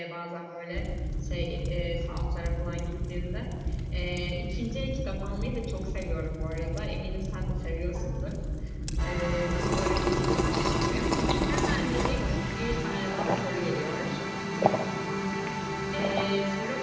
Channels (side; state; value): both; identical; correlation 1.00